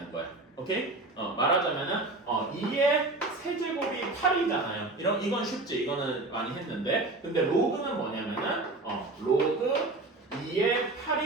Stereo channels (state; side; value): quieter; left; 3.0 dB